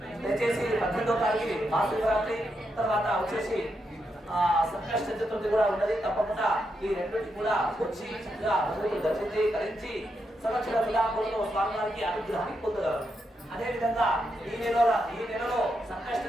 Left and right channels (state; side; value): normal; both; correlation 0.83